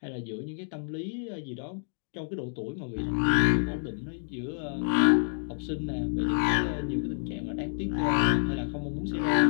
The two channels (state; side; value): silent; right; digital silence